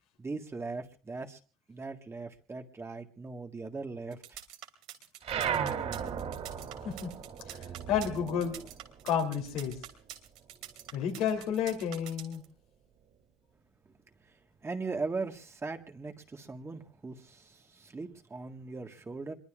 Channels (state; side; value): normal; both; correlation 0.45